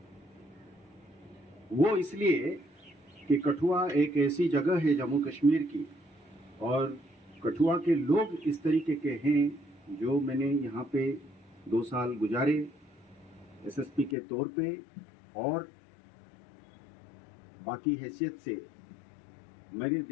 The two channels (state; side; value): drops out; right; at 14.2 s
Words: वो इसलिए कि कठुआ एक ऐसी जगह है जम्मू कश्मीर की, और कठुआ के लोग इस तरीके के हैं जो मैंने यहाँ पे 2 साल गुजारे एसएसपी के तौर पे, और बाकी हैसियत से मैंने